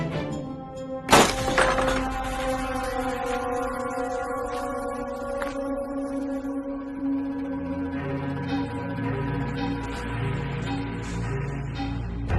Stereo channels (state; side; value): identical; both; correlation 1.00